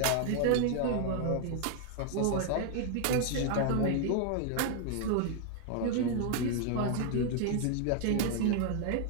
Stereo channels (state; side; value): different; both; correlation 0.00